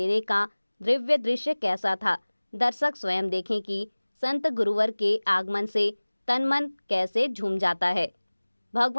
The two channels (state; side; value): inverted; both; correlation -1.00